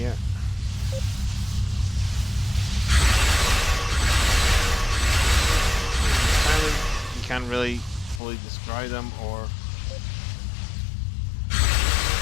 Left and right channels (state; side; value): drops out; right; at 8.2 s